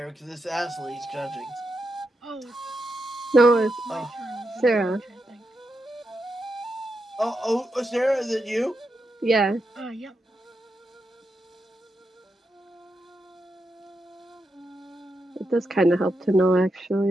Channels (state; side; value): normal; both; correlation 0.85